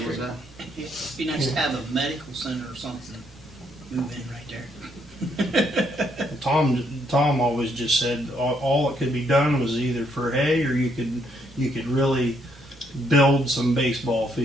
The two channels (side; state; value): both; normal; correlation 0.72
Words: that? It'd be nice to have a medical center or something move in right there. Tom always just said all that could be done was either for hay, or you could really build some baseball